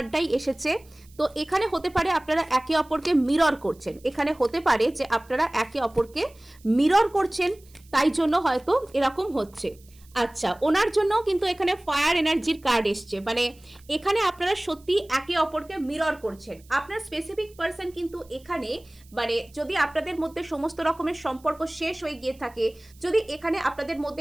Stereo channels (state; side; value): noise; right; hiss, 28 dB below the sound